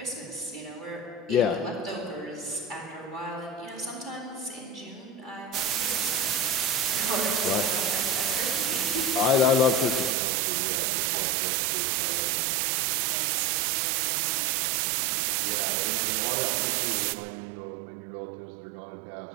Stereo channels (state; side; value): drops out; left; at 10.2 s